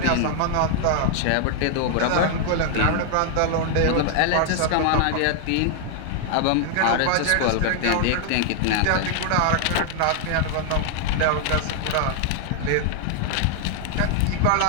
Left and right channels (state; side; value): different; both; correlation 0.00